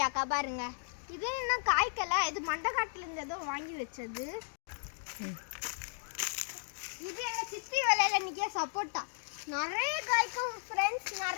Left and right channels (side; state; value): right; silent; digital silence